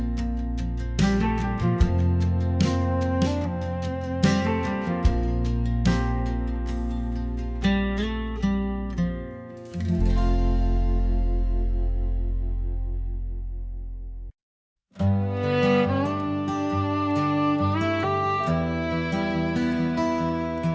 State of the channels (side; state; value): both; identical; correlation 1.00